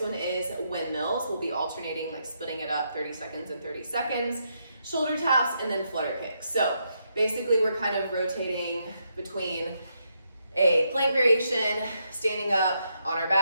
one is windmills. We'll be alternating, like splitting it up 30 seconds and 30 seconds. Shoulder taps and then flutter kicks. So basically we're kind of rotating between a plank variation, standing up on our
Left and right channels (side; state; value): both; inverted; correlation -0.79